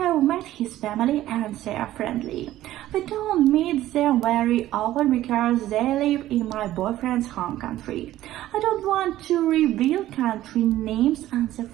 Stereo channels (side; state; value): left; quieter; 14.2 dB